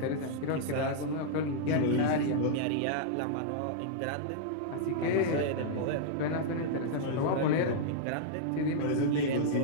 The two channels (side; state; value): both; different; correlation -0.02